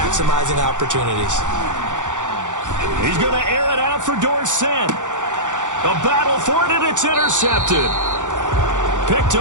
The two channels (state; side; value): late; left; 0.86 ms